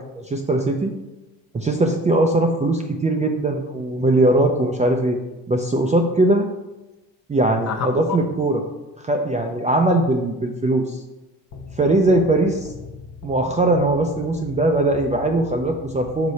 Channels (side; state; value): both; normal; correlation 0.44